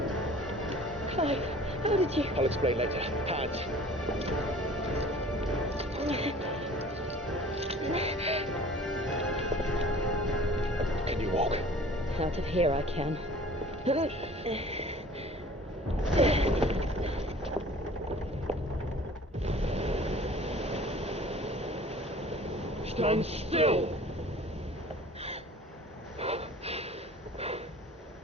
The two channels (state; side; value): normal; both; correlation 0.47